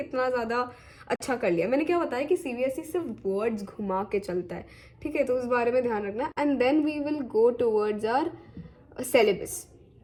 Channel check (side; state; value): both; identical; correlation 1.00